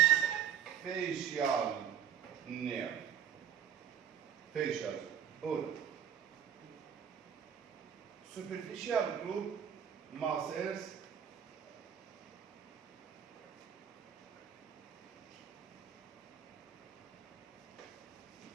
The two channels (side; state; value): left; quieter; 9.2 dB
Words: facial nerve. Facial, all. Superficial group muscles